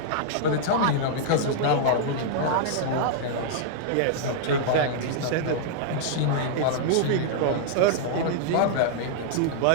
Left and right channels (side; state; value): both; different; correlation -0.01